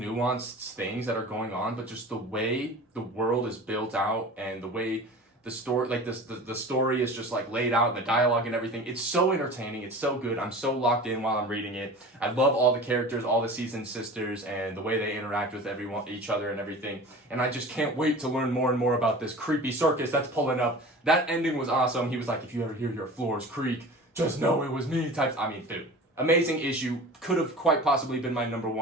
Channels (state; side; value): normal; both; correlation 0.37